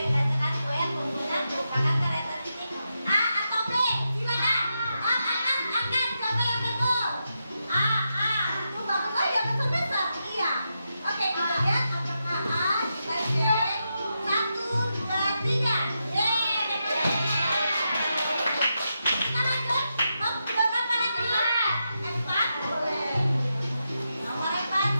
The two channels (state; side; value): inverted; both; correlation -0.86